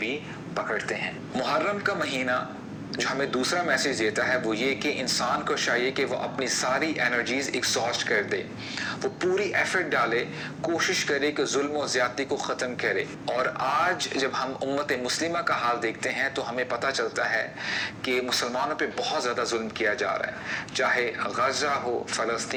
پکڑتے ہیں۔ محرم کا مہینہ جو ہمیں دوسرا میسیج دیتا ہے وہ یہ کہ انسان کو چاہیے کہ وہ اپنی ساری انرجیز ایگزاسٹ کر دے، وہ پوری ایفرٹ ڈالے، کوشش کرے کہ ظلم و زیادتی کو ختم کرے۔ اور آج جب ہم امت مسلمہ کا حال دیکھتے ہیں تو ہمیں پتہ چلتا ہے کہ مسلمانوں پہ بہت زیادہ ظلم کیا جا رہا ہے، چاہے غزہ ہو،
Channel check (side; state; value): both; identical; correlation 1.00